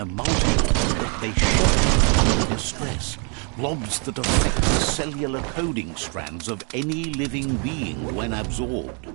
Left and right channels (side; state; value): left; quieter; 37.9 dB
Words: multitudes that they shock under distress. Blobs that affect the cellular coding strands of any living being when absorbed.